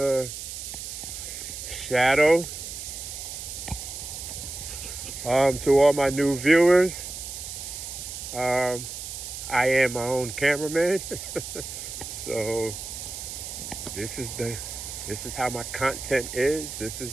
shadow. To all my new viewers, I am my own cameraman. So this is how my content is. This is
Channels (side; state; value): right; noise; hiss, 8 dB below the sound